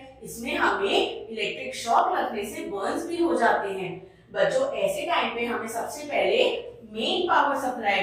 इसमें हमें इलेक्ट्रिक शॉक लगने से बर्न्स भी हो जाते हैं। बच्चों ऐसे टाइम पे हमें सबसे पहले मेन पावर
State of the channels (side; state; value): both; identical; correlation 1.00